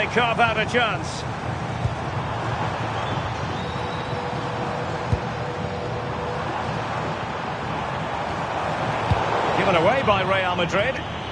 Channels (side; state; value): both; identical; correlation 1.00